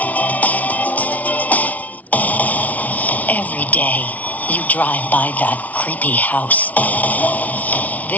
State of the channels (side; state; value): right; late; 0.072 ms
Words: Every day, you drive by that creepy house.